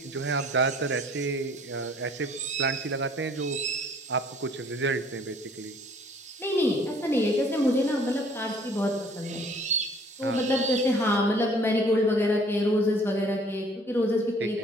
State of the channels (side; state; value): both; normal; correlation 0.56